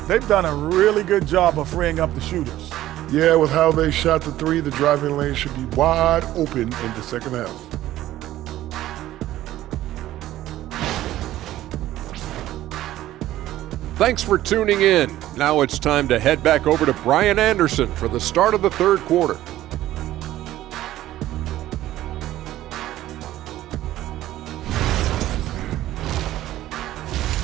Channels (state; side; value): quieter; left; 14.3 dB